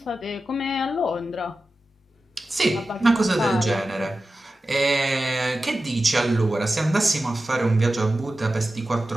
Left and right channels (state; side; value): normal; both; correlation 0.94